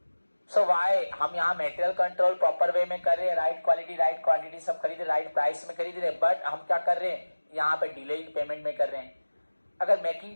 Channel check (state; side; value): inverted; both; correlation -1.00